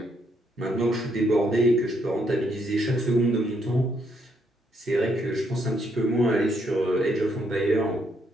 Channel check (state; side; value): normal; both; correlation 0.74